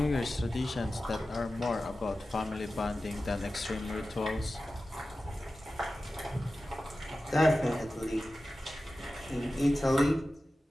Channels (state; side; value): normal; both; correlation 0.94